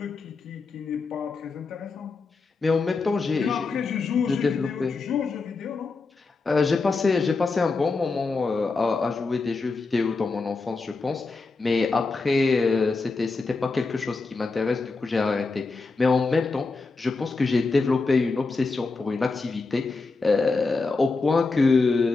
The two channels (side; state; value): right; quieter; 4.0 dB